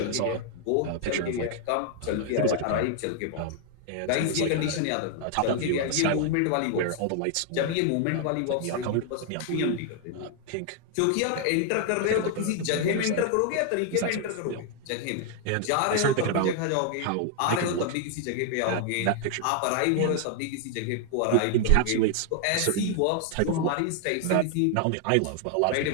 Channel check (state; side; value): different; both; correlation 0.00